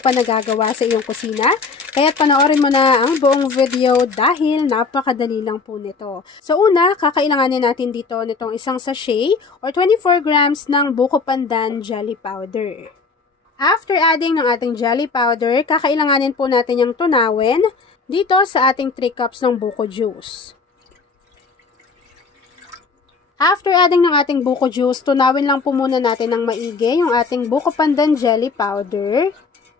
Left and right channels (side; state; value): right; quieter; 4.5 dB